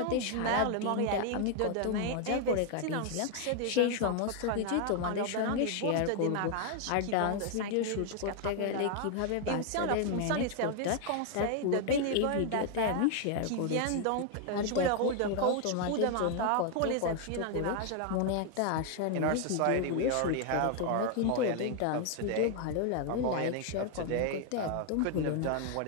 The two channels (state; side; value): different; both; correlation 0.01